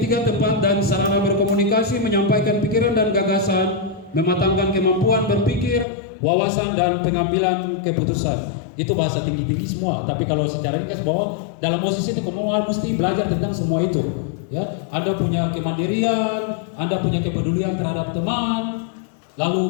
tempat dan sarana berkomunikasi, menyampaikan pikiran dan gagasan, mematangkan kemampuan berpikir, wawasan dan pengambilan keputusan. Itu bahasa tinggi-tinggi semua, tapi kalau secara ringkas bahwa dalam OSIS itu kamu mesti belajar tentang semua itu, ya. Anda punya kemandirian, Anda punya kepedulian terhadap teman,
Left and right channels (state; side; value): drops out; right; at 5.9 s